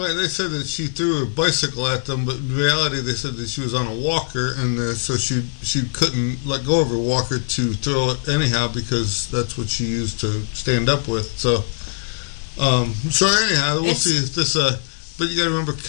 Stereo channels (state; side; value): silent; right; digital silence